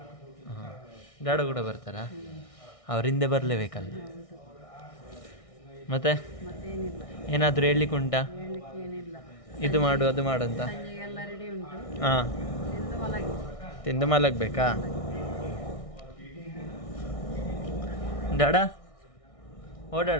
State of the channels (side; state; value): right; late; 1.6 ms